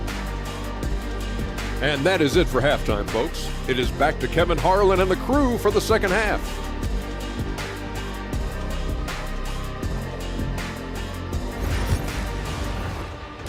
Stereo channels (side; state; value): both; identical; correlation 1.00